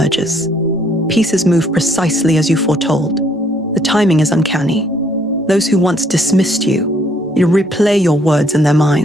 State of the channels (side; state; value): both; normal; correlation 0.66